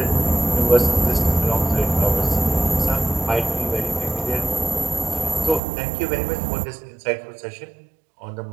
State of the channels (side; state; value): left; drops out; at 5.6 s